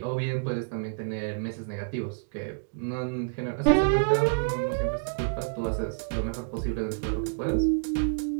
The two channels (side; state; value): left; silent; digital silence